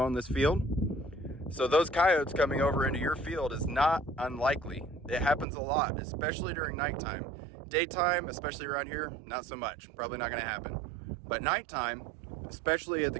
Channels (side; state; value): left; drops out; at 5.5 s